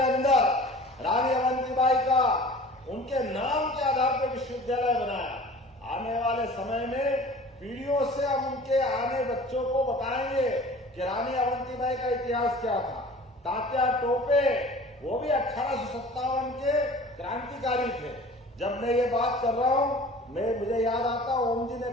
अंदर रानी अवंतीबाई का उनके नाम के आधार पर विश्वविद्यालय बनाया। आने वाले समय में पीढ़ियों से हम उनके आने बच्चों को बताएंगे कि रानी अवंतीबाई का इतिहास क्या था। तात्या टोपे, वो भी 1857 के क्रांतिकारी थे। जब मैं ये बात कर रहा हूँ, मुझे याद आता, ओम जी ने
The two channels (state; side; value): normal; both; correlation 0.44